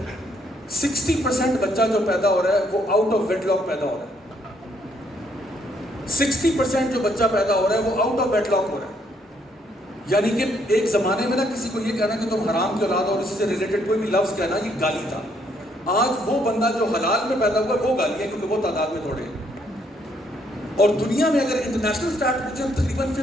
60% بچہ جو پیدا ہو رہا ہے وہ آؤٹ آف ویٹ لاک پیدا ہو رہا ہے. 60% جو بچہ پیدا ہو رہا ہے وہ آؤٹ آف ویٹ لاک ہو رہا ہے. یعنی کہ ایک زمانے میں نا کسی کو یہ کہنا کہ تم حرام کی اولاد اور اسی سے ریلیٹڈ کوئی بھی لفظ کہنا یہ گالی تھا. آج وہ بندہ جو حلال میں پیدا ہوا وہ گالی ہے کیونکہ وہ تعداد میں تھوڑے ہیں. اور دنیا میں اگر انٹرنیشنل اسٹارٹ پوچھیں تقریباً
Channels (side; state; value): both; normal; correlation 0.70